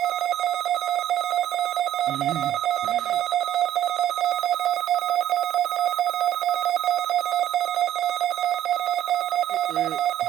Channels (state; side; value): quieter; left; 11.8 dB